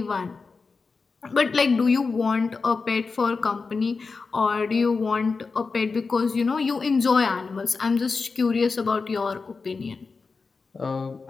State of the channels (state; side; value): quieter; right; 4.5 dB